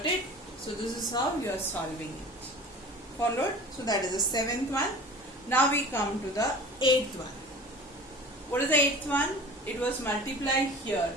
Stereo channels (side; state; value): both; normal; correlation 0.40